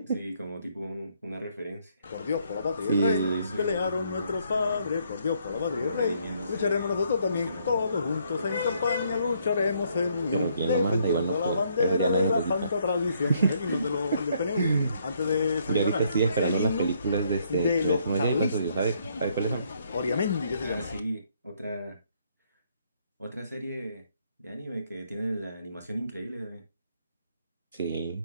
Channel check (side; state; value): both; inverted; correlation -0.69